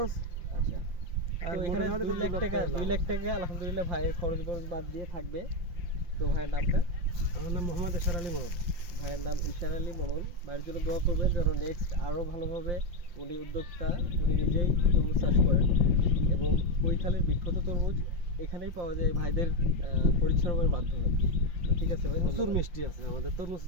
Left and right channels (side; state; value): left; late; 5.8 ms